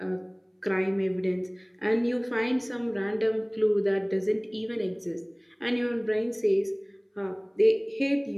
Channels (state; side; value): identical; both; correlation 1.00